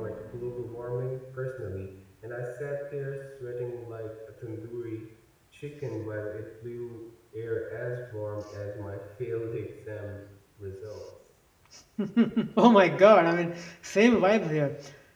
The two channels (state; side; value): identical; both; correlation 1.00